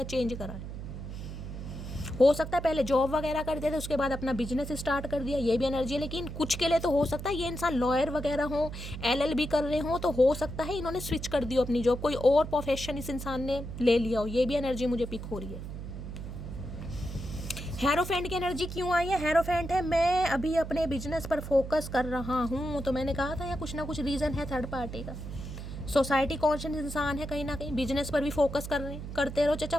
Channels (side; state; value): right; noise; hum, 8 dB below the sound